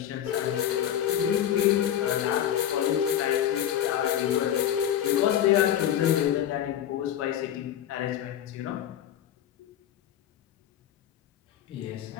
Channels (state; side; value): quieter; right; 10.7 dB